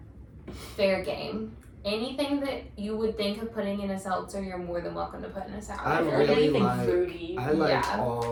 fair game. Anything that you would think of putting in a seltzer, you're more than welcome to put in a sour. I Or really anything like- fruity. I like Yeah.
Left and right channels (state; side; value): identical; both; correlation 1.00